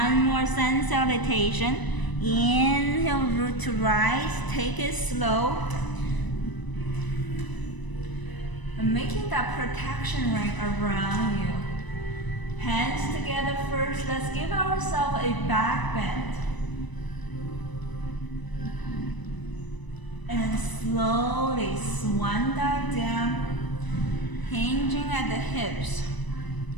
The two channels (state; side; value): late; right; 1.0 ms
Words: more sun salutation. Inhale, root to rise. Take it slow. And making that protection ring around you. Hands together first. Let's give ourselves a back bend. And slowly swan dive down, hinging at the hips.